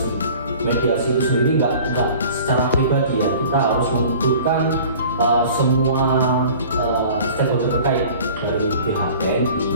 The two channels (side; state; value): both; inverted; correlation -0.45